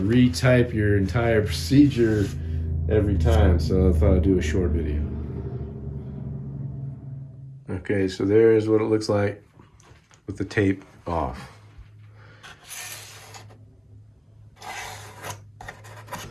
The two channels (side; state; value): both; identical; correlation 1.00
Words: your entire procedure every time. So I thought I'd do a short video. Okay, so there's what it looks like with the tape off.